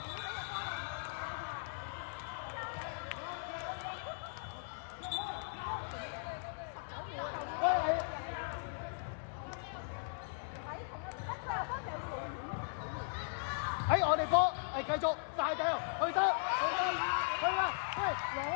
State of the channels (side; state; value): right; silent; digital silence